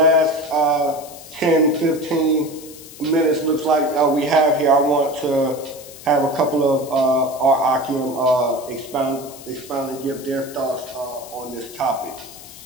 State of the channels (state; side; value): noise; left; hiss, 17 dB below the sound